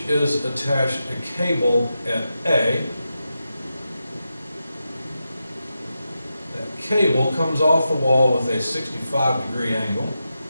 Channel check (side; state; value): both; inverted; correlation -0.89